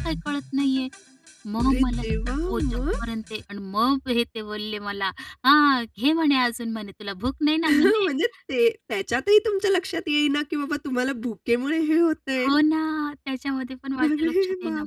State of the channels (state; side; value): identical; both; correlation 1.00